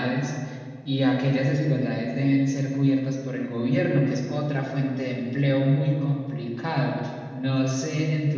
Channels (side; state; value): both; identical; correlation 1.00